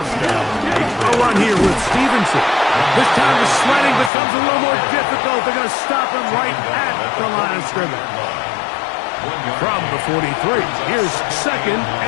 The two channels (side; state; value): right; drops out; at 4.1 s